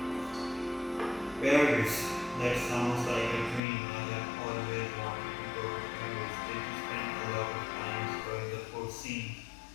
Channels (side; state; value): right; drops out; at 3.6 s